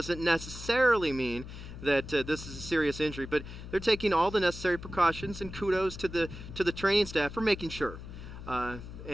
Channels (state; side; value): noise; left; hum, 12 dB below the sound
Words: necessarily mean that this is a serious injury, but they're taking all the necessary precautions, and kudos to the training staff for making sure.